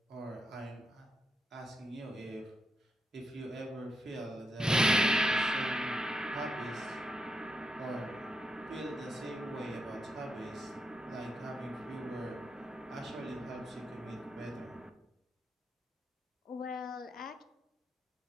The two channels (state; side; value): normal; both; correlation 0.83